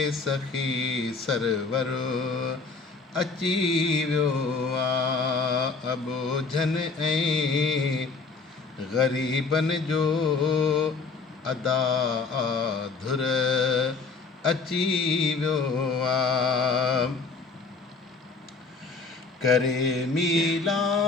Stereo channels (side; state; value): right; quieter; 4.3 dB